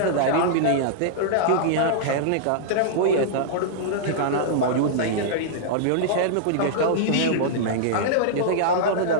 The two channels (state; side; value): different; both; correlation -0.02